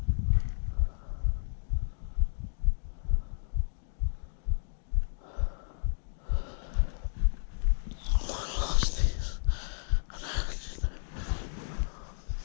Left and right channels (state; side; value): silent; right; digital silence